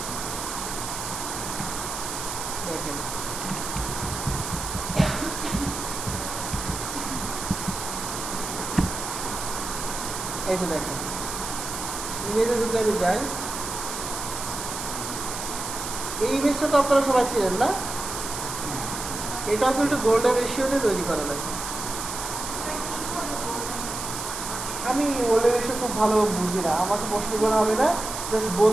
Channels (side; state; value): right; noise; hiss, 6 dB below the sound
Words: দেখেন এই যে দেখেন ইমেজে যদি আমি যাই, এই ইমেজটা তো আপনারা সবাই ছিলেন না, এটাও কিন্তু গোল্ডেন রেশিওতে তৈরি করা লাগে। আমি গোল্ডেন রেশিও খুব ভালো বুঝি না, আমাকে প্রশ্ন করা হবে না, জাস্ট